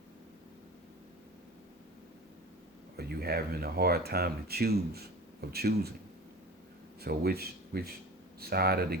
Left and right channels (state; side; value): normal; both; correlation 0.35